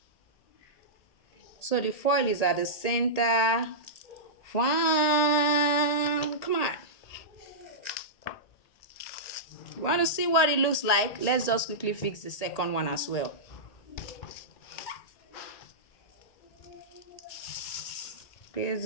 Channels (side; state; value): right; late; 1.8 ms